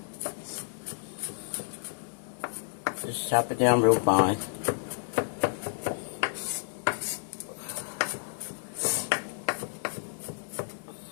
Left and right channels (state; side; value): silent; right; digital silence